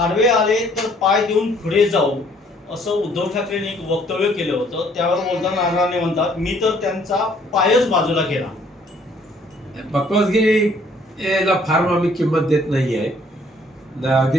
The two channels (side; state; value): both; normal; correlation 0.62